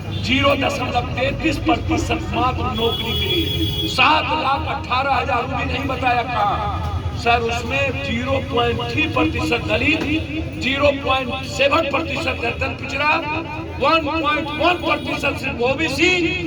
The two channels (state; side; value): identical; both; correlation 1.00